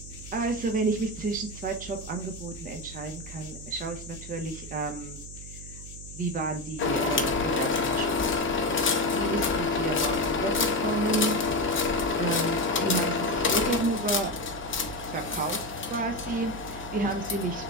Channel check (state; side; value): noise; right; hum, 13 dB below the sound